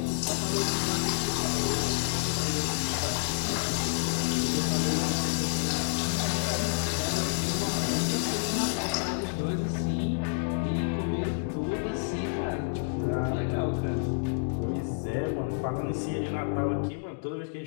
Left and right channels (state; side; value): silent; right; digital silence